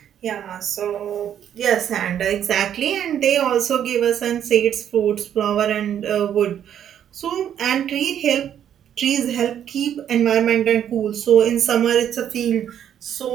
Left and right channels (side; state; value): left; quieter; 9.7 dB